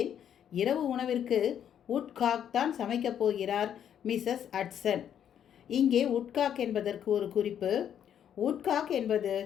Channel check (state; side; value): quieter; right; 9.4 dB